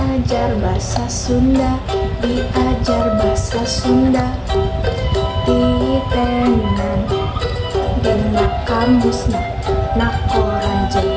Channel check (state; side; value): identical; both; correlation 1.00